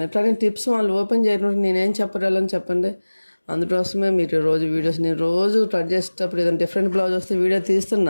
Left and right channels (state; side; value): inverted; both; correlation -1.00